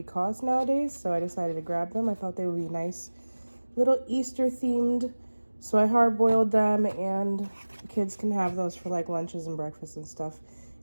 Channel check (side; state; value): both; inverted; correlation -1.00